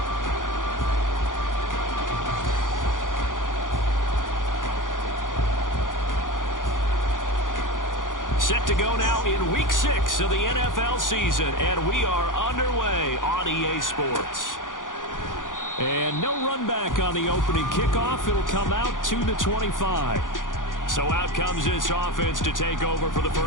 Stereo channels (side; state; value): right; late; 0.88 ms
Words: Set to go now in Week 6 of the NFL season, and we are underway on EA Sports. And no run back on the opening kickoff. It'll come out to the 25. So out comes this offense to take over for the